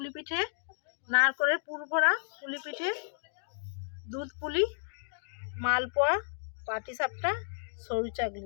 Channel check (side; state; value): right; silent; digital silence